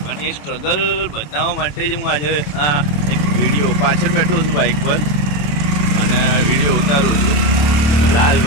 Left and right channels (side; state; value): right; late; 27 ms